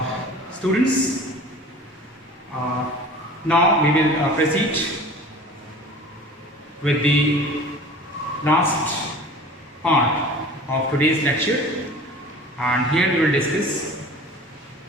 students, now we will proceed with the last part of today's lecture, and here we will discuss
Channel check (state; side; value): normal; both; correlation 0.42